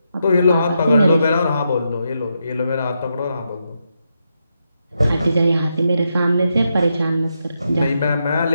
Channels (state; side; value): inverted; both; correlation -0.83